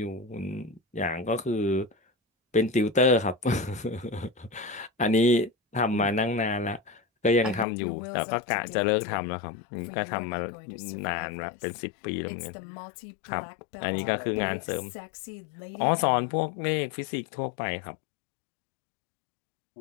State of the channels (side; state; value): right; drops out; at 7.7 s